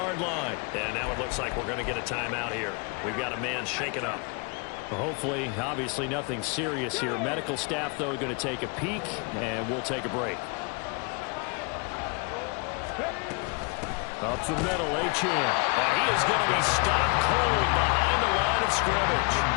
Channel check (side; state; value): right; quieter; 32.4 dB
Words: line. And now it looks like we're going to get a timeout here. We've got a man shaken up. Well, hopefully, obviously nothing serious here. Medical staff, though, going to take a peek, and we'll take a break. Up the middle, Achane. And he is going to be stopped cold behind the line of scrimmage.